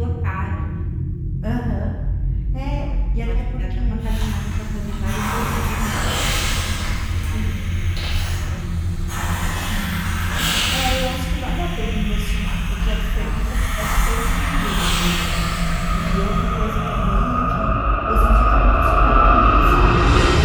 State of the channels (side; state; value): both; identical; correlation 1.00